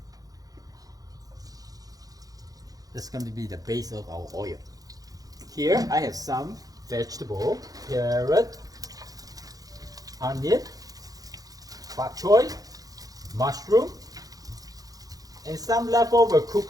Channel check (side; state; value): left; late; 0.18 ms